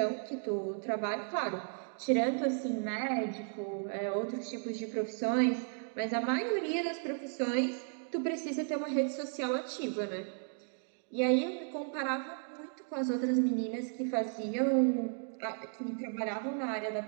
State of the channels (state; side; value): silent; left; 55 dB below the other